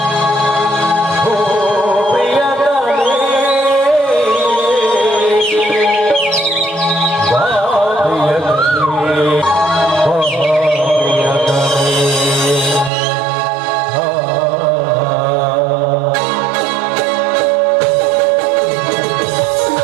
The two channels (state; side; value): drops out; left; at 12.9 s